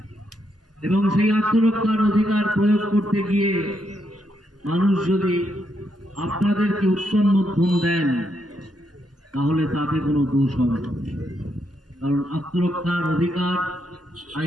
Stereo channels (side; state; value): both; normal; correlation 0.79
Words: এবং সেই আত্মরক্ষার অধিকার প্রয়োগ করতে গিয়ে মানুষ যদি আপনাদেরকে উত্তম মধ্যম দেন তাহলে তাতে কোনো দোষ হবে না। কারণ আত্মরক্ষার অধিকার